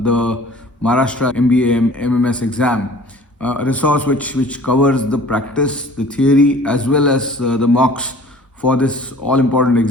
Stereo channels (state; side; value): normal; both; correlation 0.48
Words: the Maharashtra MBA MMS exam. A resource which covers the practice, the theory, as well as the mocks for this all important